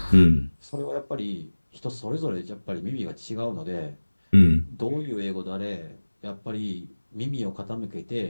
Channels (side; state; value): both; inverted; correlation -1.00